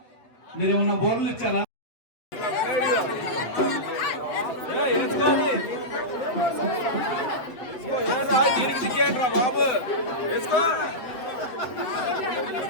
మీరేమన్నా బోర్లు ఇచ్చారా? దీనికి దిగ్గేంట్రా బాబు వేసుకో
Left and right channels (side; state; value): right; late; 7.6 ms